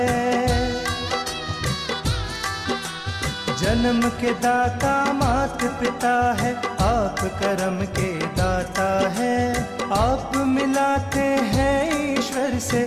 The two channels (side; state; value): both; identical; correlation 1.00